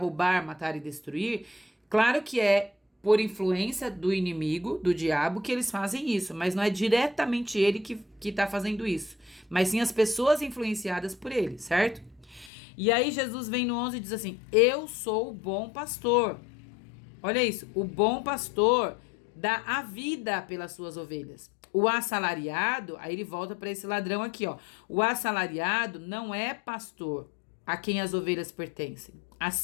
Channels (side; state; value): right; drops out; at 12.5 s